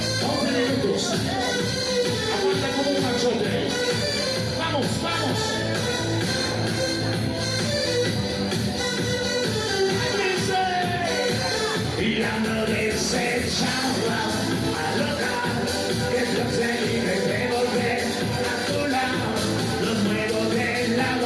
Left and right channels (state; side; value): identical; both; correlation 1.00